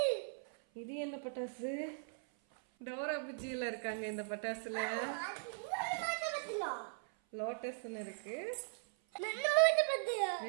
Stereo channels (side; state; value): left; silent; 52 dB below the other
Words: இது என்ன பட்டாசு? டோரா புஜ்ஜியில இருக்காங்க இந்த பட்டாசுல. லோட்டஸ்ன்னு இருக்கு.